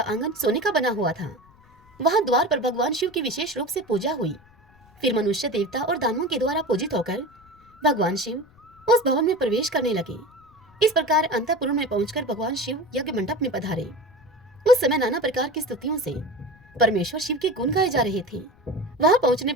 आंगन सोने का बना हुआ था। वहां द्वार पर भगवान शिव की विशेष रूप से पूजा हुई। फिर मनुष्य, देवता और दानवों के द्वारा पूजित होकर भगवान शिव उस भवन में प्रवेश करने लगे। इस प्रकार अंतःपुर में पहुंचकर भगवान शिव यज्ञ मंडप में पधारे। उस समय नाना प्रकार की स्तुतियों से परमेश्वर शिव के गुण गाए जा रहे थे। वहां पहुंचने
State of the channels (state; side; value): noise; left; rumble, 28 dB below the sound